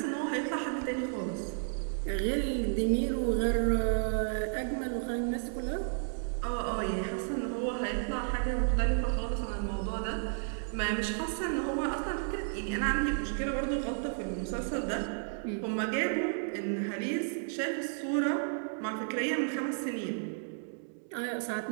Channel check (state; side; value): silent; left; digital silence